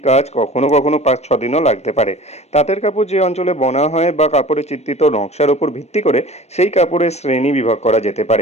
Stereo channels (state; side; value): late; right; 0.31 ms